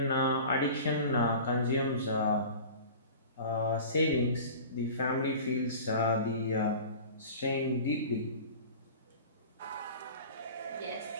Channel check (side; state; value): both; inverted; correlation -0.39